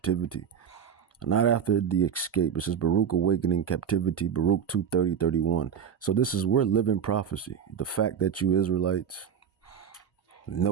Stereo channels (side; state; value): left; quieter; 7.8 dB